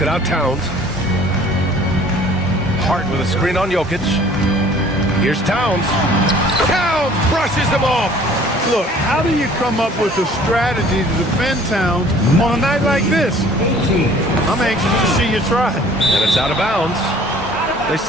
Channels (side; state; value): both; normal; correlation 0.52